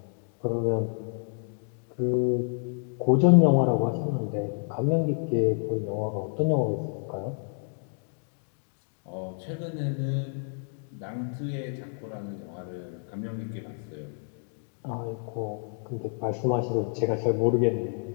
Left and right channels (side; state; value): right; silent; 59 dB below the other